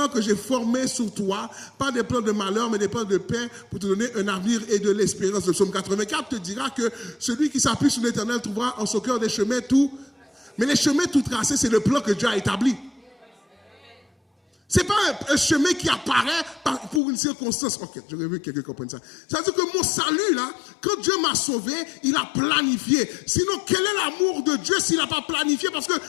que j'ai formés sur toi, pas des plans de malheur, mais des plans de paix pour te donner un avenir et de l'espérance. Le psaume 84 te dira que celui qui s'appuie sur l'Éternel trouvera en son cœur des chemins tout. Mais les chemins tout tracés, c'est le plan que Dieu a établi. Ce n'est pas un chemin qui apparaît pour une circonstance. Ok, j'aurais vu que quelqu'un comprenne ça. Ça veut dire que mon salut, là, quand Dieu m'a sauvé, il a planifié. Sinon, quel est l'amour de Dieu s'il n'a pas planifié? Parce que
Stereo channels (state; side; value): drops out; right; at 17.0 s